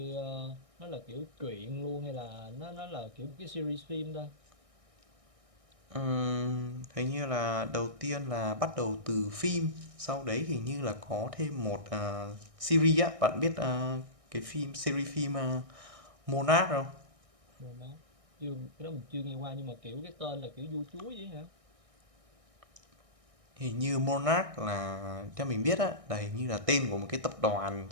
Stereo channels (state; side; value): late; left; 1.6 ms